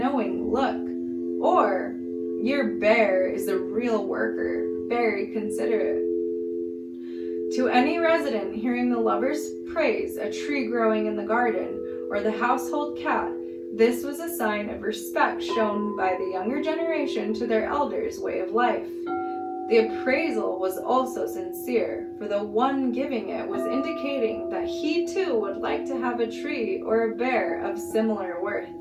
look, or your bear is a real worker, very considerate. To any resident hearing the lovers praise a tree growing in the garden or the household cat, this was a sign of respect shown by the younger generation to their elders' way of life. The appraisal was also sincere, for the one giving it was indicating that he too would like to have a tree or a bear of similar worth.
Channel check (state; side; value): identical; both; correlation 1.00